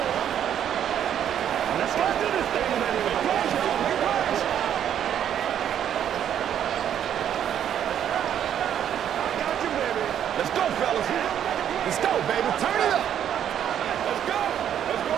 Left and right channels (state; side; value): quieter; left; 9.7 dB